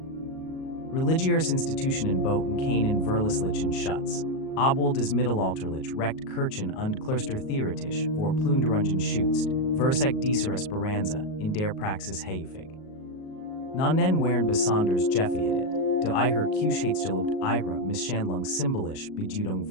Religiöse Institutionen boten keinen verlässlichen Schutz, obwohl des mittelalterlich Recht Kirchen und Klöster theoretisch vor Plünderungen schützt, versagt dieser Esperanza in der Praxis häufig. Nannen waren besonders gefährdet, da ihre Kühnheitsgelobt ihre Misshandlung symbolisch Bedeutung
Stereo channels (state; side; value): late; right; 38 ms